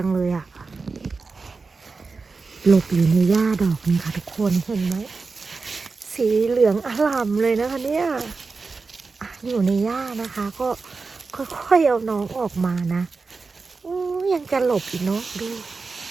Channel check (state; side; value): quieter; left; 4.3 dB